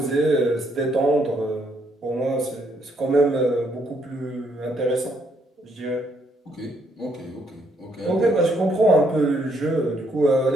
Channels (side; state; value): both; normal; correlation 0.72